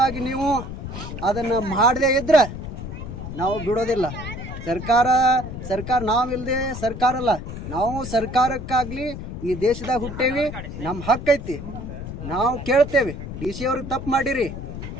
ನೀವು ಅದನ್ನು ಮಾಡದೇ ಇದ್ದರೆ ನಾವು ಬಿಡೋದಿಲ್ಲ. ಸರ್ಕಾರ ನಾವಿಲ್ಲದೆ ಸರ್ಕಾರ ಅಲ್ಲ. ನಾವು ಸರ್ಕಾರಕ್ಕಾಗಲಿ ಈ ದೇಶದಾಗ ಹುಟ್ಟೇವಿ, ನಮ್ಮ ಹಕ್ಕೈತಿ, ನಾವು ಕೇಳ್ತೇವೆ. DC ಅವ್ರಿಗೆ ತಪ್ಪು ಮಾಡಿರಿ,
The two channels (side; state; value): left; noise; rumble, 8 dB below the sound